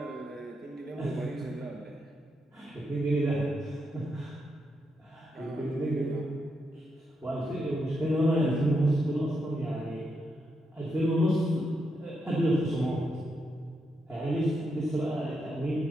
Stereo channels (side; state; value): both; normal; correlation 0.82